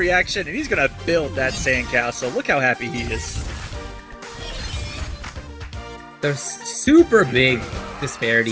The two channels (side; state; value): both; identical; correlation 1.00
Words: And he's gonna build that sandcastle. Look how happy he is. The super big